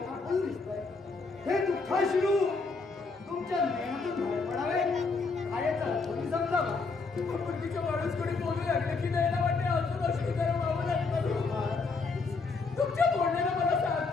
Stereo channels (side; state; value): right; quieter; 4.2 dB